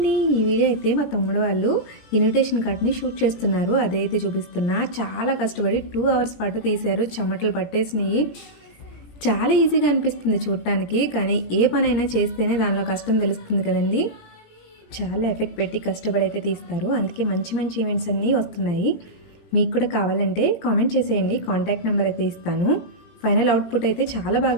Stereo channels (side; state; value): right; late; 17 ms